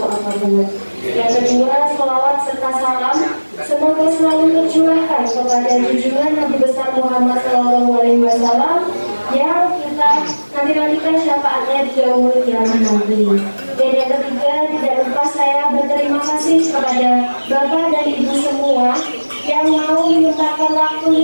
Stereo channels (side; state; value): both; inverted; correlation -1.00